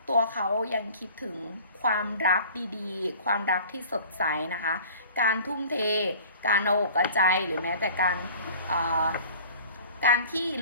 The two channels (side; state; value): both; inverted; correlation -0.45